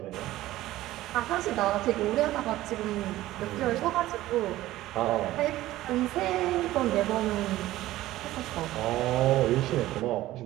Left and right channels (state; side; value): quieter; left; 15.7 dB